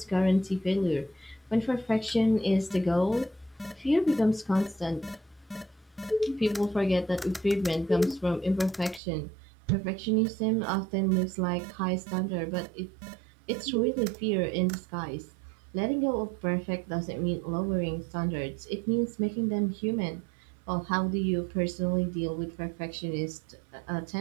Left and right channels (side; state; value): left; drops out; at 9.0 s